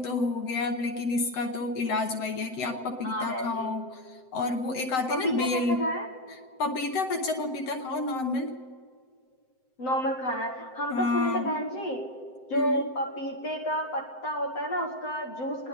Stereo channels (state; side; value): late; right; 7.8 ms